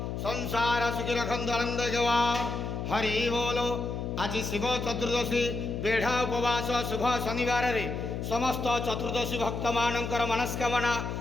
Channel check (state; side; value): noise; left; hum, 4 dB below the sound